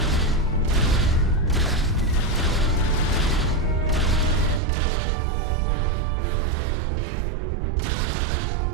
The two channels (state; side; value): drops out; left; at 4.6 s